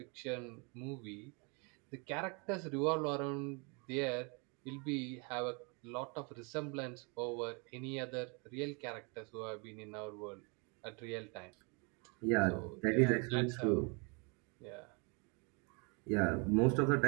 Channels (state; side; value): quieter; left; 32.7 dB